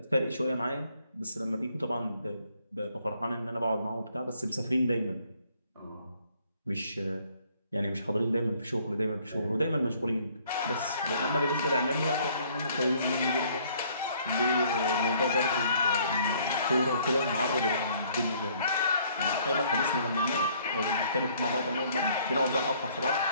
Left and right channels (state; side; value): inverted; both; correlation -0.62